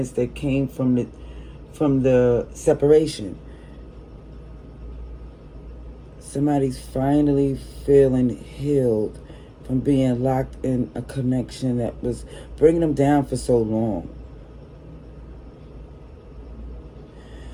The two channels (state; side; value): identical; both; correlation 1.00